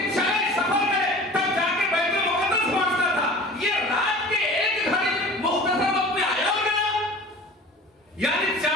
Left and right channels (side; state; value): both; normal; correlation 0.41